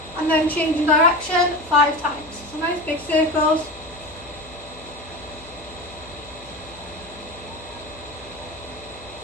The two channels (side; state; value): left; noise; hum, 21 dB below the sound